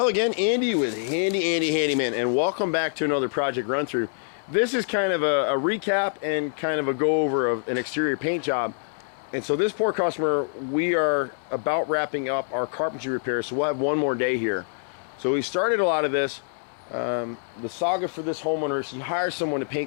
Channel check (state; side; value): silent; right; digital silence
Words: again, Andy with HandyANdy Handyman, and welcome back to another project run through. This is kind of a recap and kind of a go over of an exterior paint job. And so this poor customer, we are about wrapping up our carpentry repairs, so we'll have one more day here. So we started a lot of this. The saga for this homeowner is he hired someone to